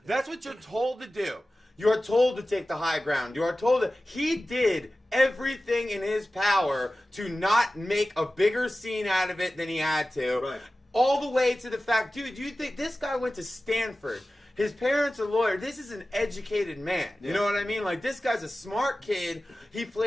That's what you're told to do. You're told to take the high ground. You are told that he did everything in his power to not make a bigger scene out of it than he had to. Right. All the way to the fact, dude, you think this guy went to Stanford? His parents are lawyers. This is an educated man. You know what I mean? Like, this guy's a smart kid. He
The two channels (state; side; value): normal; both; correlation 0.96